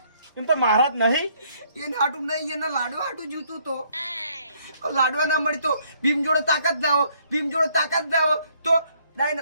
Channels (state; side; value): inverted; both; correlation -0.67